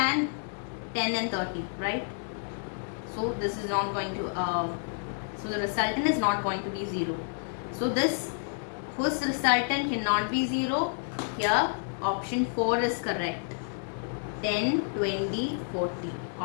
10 and 30, right? So this is not going to so the resultant is not going to be 0. So this whose resultant cannot be 0, here option 4 is correct. 10, 20, 40,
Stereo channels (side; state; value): right; silent; digital silence